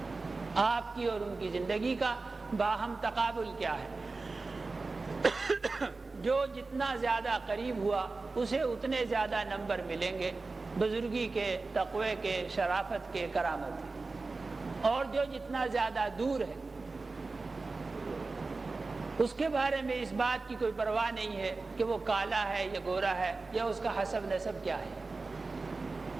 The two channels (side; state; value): left; quieter; 3.7 dB